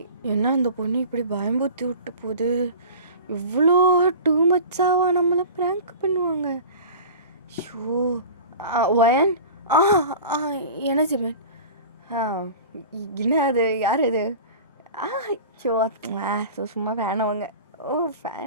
என்ன இந்த பொண்ணு இப்படி பயம்புத்தி விட்டு போகுது? இவ்வளோ டூ மச்சாவா நம்மளை ப்ராங்க் பண்ணுவாங்க? Show wine. என்ன ஜிமின்? என்ன அது? யார் அது? ஷோ சும்மா ஃபேனவங்க. ஓ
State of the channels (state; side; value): inverted; both; correlation -0.37